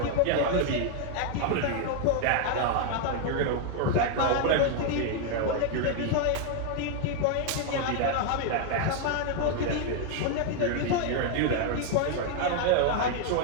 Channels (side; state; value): both; different; correlation 0.00